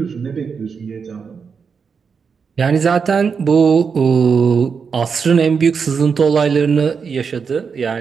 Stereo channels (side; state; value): left; quieter; 5.9 dB